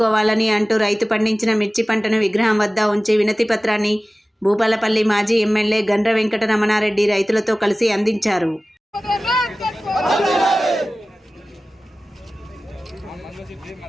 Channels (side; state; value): both; normal; correlation 0.97